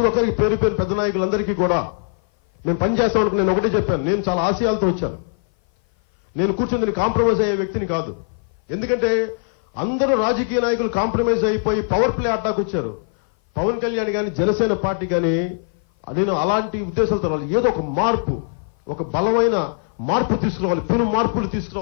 ఒక్కరికి పేరు పేరు పెద్ద నాయకులందరికీ కూడా మేము పనిచేస్తాం అనుకుని నేను ఒకటే చెప్పాను. నేను చాలా ఆశయాలతో వచ్చాను. నేను కూర్చొని కాంప్రమైజ్ అయ్యే వ్యక్తిని కాదు. ఎందుకంటే అందరూ రాజకీయ నాయకులు కాంప్రమైజ్ అయిపోయి పవర్ ప్లే అడ్డాకు వచ్చారు. పవన్ కళ్యాణ్ కానీ జనసేన పార్టీ కానీ నేను అలాంటి ఉద్దేశాలతో రావాలి. ఏదో ఒక మార్పు, ఒక బలమైన మార్పు తీసుకురావాలి, పెను మార్పులు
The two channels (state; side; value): silent; right; 58 dB below the other